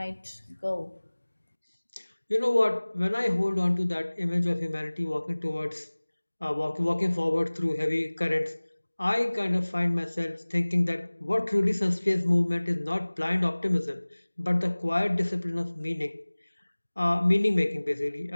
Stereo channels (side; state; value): both; inverted; correlation -1.00